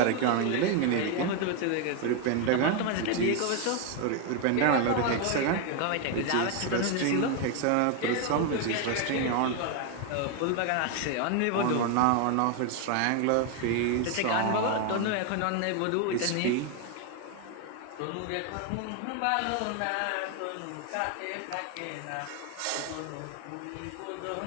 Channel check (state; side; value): different; both; correlation 0.01